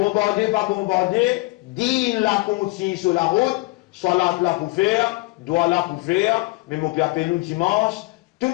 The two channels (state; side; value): quieter; right; 23.3 dB